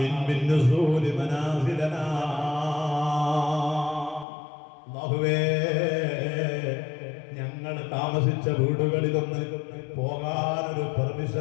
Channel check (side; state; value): right; drops out; at 4.2 s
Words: നുസൂലി മനാസിലനാ. അല്ലാഹുവേ, ഞങ്ങൾ താമസിച്ച വീടുകളിലൊന്ന് പോകാനൊരു